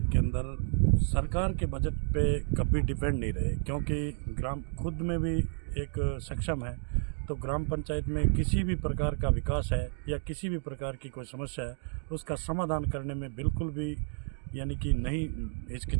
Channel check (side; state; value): left; silent; 57 dB below the other